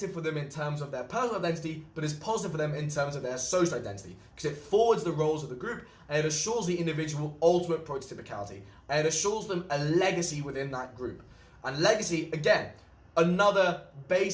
for them in terms of their personal identity, but is positive for them in terms of their social identity, because it forwards the roles of the group and it assures the individual ultimate prototypicality and it assures them a legacy within that group. And legacy, again, another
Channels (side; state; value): both; identical; correlation 1.00